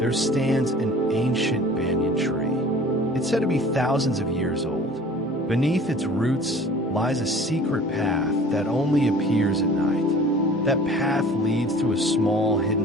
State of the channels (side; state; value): both; normal; correlation 0.46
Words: stands an ancient banyan tree. It's said to be thousands of years old. Beneath its roots lies a secret path that only appears at night. That path leads to a small